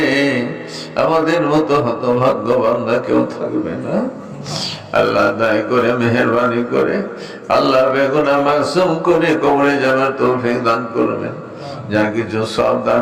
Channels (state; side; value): identical; both; correlation 1.00